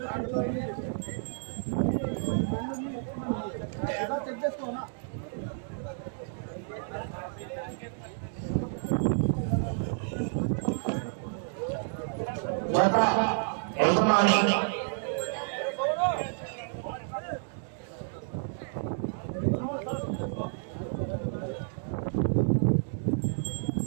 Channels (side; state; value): left; silent; digital silence